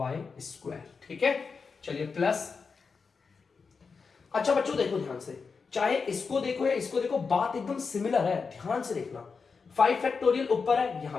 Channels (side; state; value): right; quieter; 5.1 dB